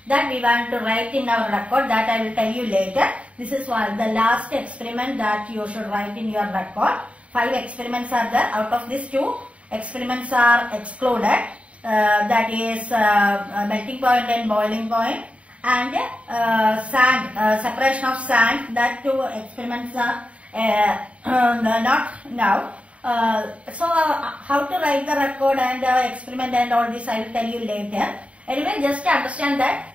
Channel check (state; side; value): late; left; 0.064 ms